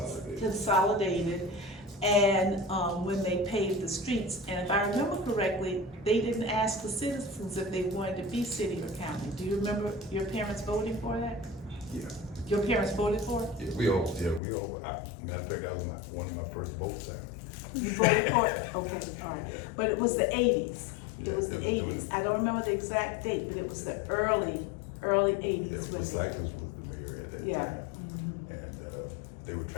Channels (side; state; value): right; drops out; at 14.4 s